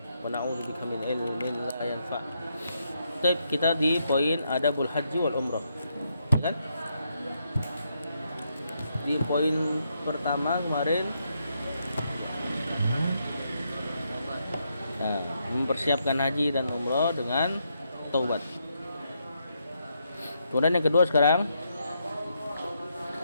wa na'udzubika min ilmin la yanfa'. Baik, kita di poin adabul haji wal umrah. Kan? Di poin pertama kemarin mempersiapkan haji dan umrah dengan taubat. Kemudian yang kedua sekarang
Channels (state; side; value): inverted; both; correlation -0.79